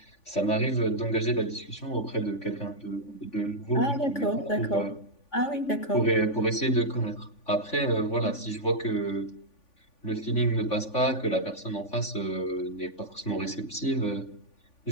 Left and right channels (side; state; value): right; late; 3.5 ms